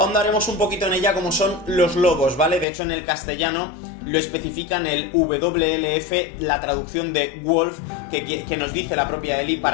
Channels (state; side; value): drops out; right; at 2.7 s